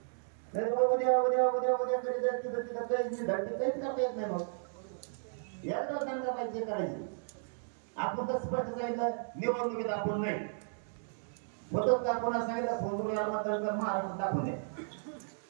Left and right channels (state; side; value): silent; left; digital silence